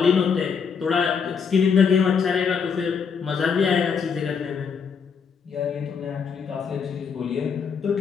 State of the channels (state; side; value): quieter; right; 6.3 dB